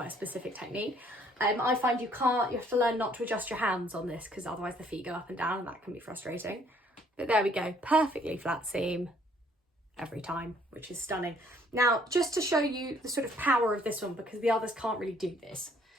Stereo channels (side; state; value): both; normal; correlation 0.62